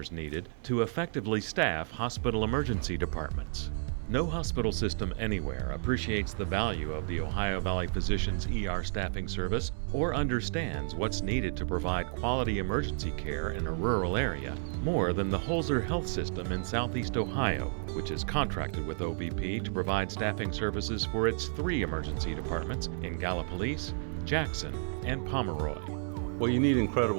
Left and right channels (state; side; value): silent; left; digital silence